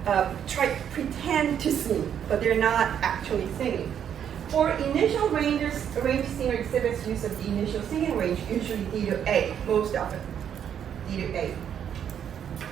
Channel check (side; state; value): left; quieter; 8.9 dB